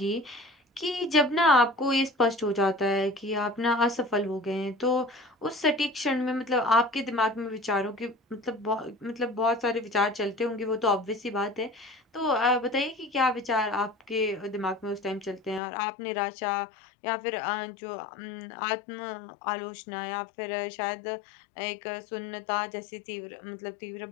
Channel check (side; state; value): right; drops out; at 15.6 s